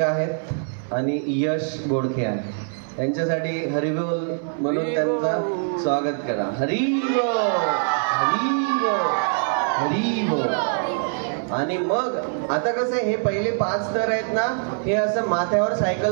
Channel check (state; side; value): silent; left; 63 dB below the other